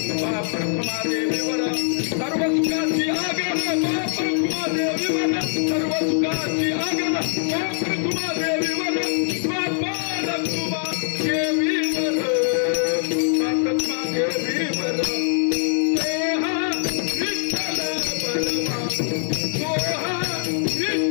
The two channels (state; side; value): silent; right; 64 dB below the other